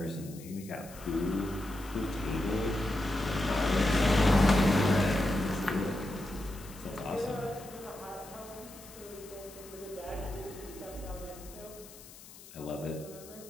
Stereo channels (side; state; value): left; noise; hiss, 18 dB below the sound